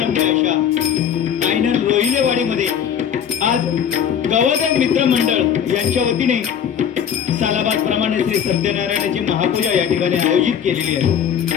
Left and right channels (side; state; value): right; quieter; 8.5 dB